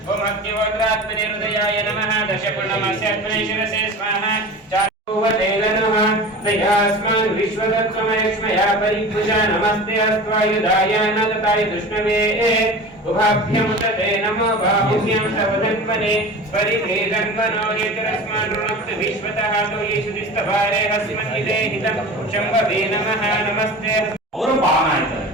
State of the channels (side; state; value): both; normal; correlation 0.35